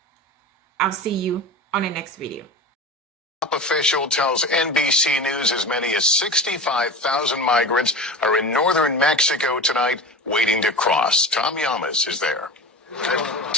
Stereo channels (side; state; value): both; normal; correlation 0.30